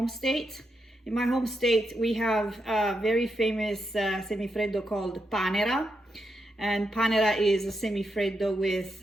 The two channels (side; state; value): both; normal; correlation 0.83